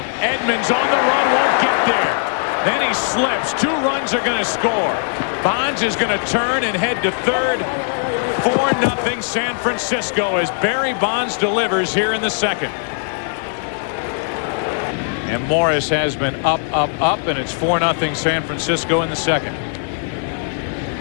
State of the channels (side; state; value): right; silent; 66 dB below the other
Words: Edmonds on the run, won't get there. Then he slips. 2 runs are going to score. Bonds is going to turn and head to third. 4-0 San Francisco as Barry Bonds delivers here in the second. And Morris has been up, and it's 4-0 San Francisco in the second.